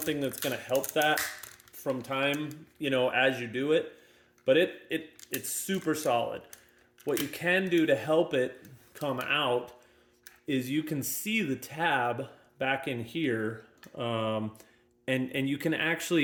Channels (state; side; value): identical; both; correlation 1.00